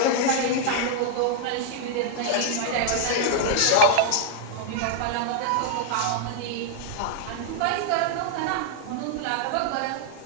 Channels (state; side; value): different; both; correlation 0.00